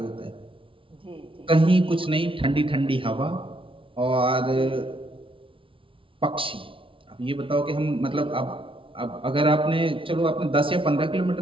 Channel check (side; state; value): left; late; 0.25 ms